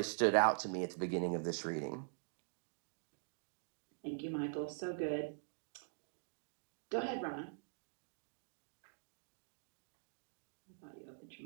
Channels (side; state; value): left; silent; digital silence